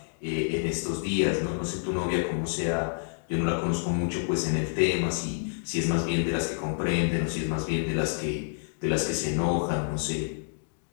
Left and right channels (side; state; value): right; silent; digital silence